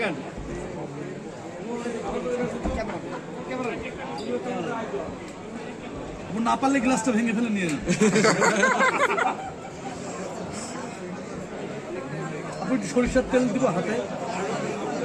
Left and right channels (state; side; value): identical; both; correlation 1.00